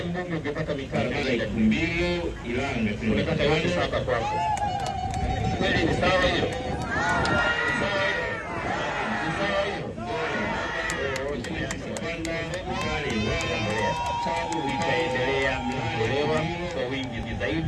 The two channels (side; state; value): both; identical; correlation 1.00